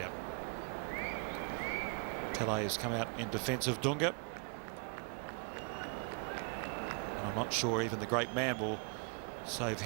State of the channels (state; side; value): quieter; left; 36.4 dB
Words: Pelé has come out in defence of Dunga. And I'm not sure even the great man will save